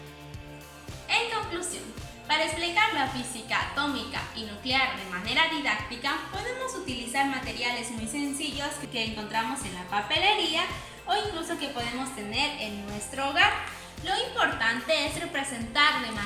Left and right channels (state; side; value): identical; both; correlation 1.00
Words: En conclusión, para explicar la física atómica y nuclear de manera didáctica, podemos utilizar materiales muy sencillos que encontramos en la papelería o incluso que podemos tener en nuestro hogar. Lo importante es representar de